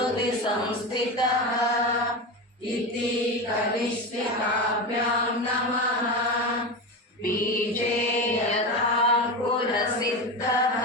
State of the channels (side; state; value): both; normal; correlation 0.21